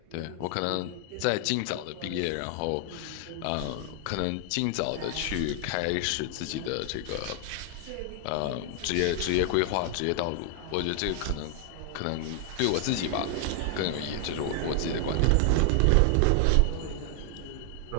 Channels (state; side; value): different; both; correlation 0.00